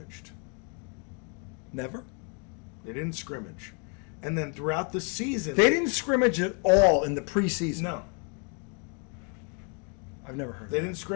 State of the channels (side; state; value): right; quieter; 37.5 dB